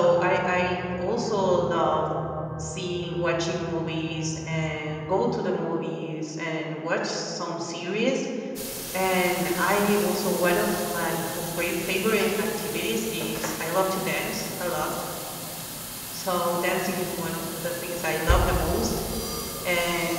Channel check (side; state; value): both; identical; correlation 1.00